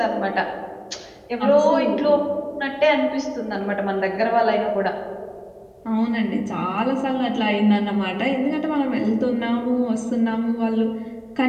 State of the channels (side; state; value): both; identical; correlation 1.00